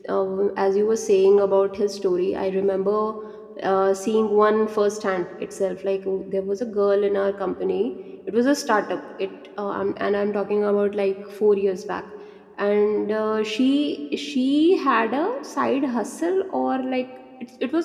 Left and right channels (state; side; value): identical; both; correlation 1.00